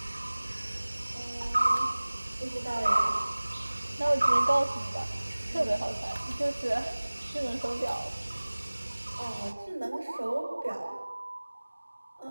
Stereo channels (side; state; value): both; inverted; correlation -1.00